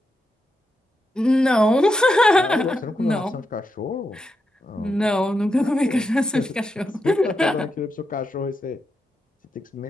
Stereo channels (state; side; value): normal; both; correlation 0.85